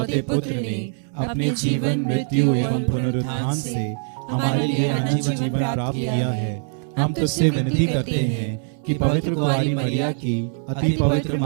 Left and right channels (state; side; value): silent; left; 61 dB below the other